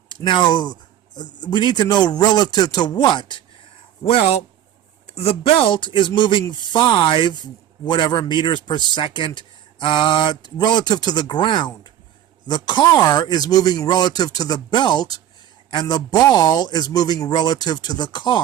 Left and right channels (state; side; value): quieter; left; 11.1 dB